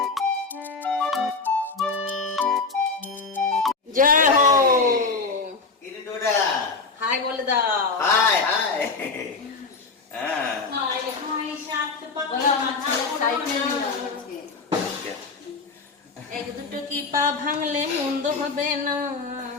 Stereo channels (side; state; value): right; quieter; 4.3 dB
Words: জয় হো, হাই বলে দাও। হাই হাই হ্যাঁ হাই হাই সাত বলো, আমার ছেলে সাইকেল নিল আজকে। এক দুটো কি পা ভাঙলে মন্দ হবে না।